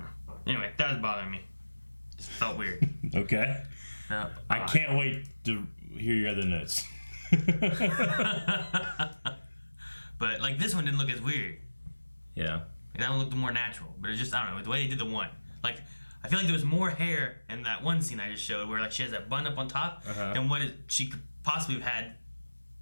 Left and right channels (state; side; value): inverted; both; correlation -1.00